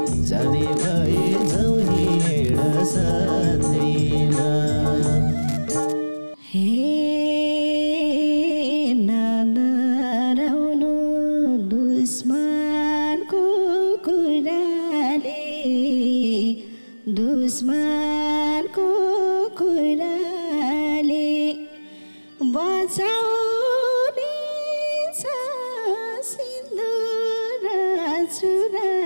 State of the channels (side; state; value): both; inverted; correlation -1.00